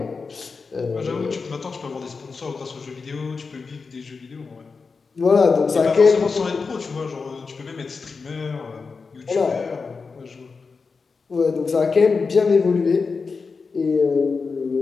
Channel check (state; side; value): quieter; right; 4.7 dB